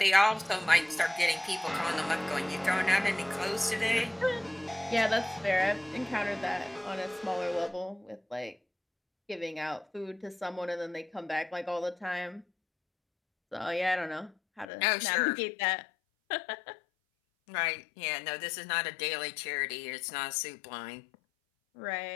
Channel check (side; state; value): right; drops out; at 14.7 s